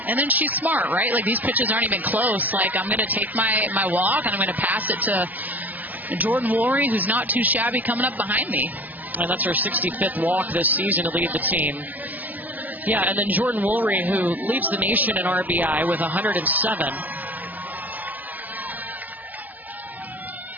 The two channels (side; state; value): left; late; 0.081 ms